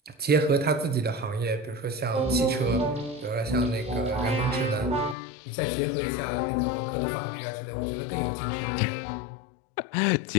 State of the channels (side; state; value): right; drops out; at 5.2 s